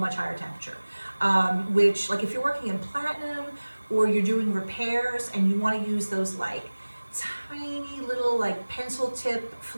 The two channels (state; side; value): inverted; both; correlation -1.00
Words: higher temperature, which, like if you're working in platinum or you're doing repairs and you want to use those like tiny little like pencil tip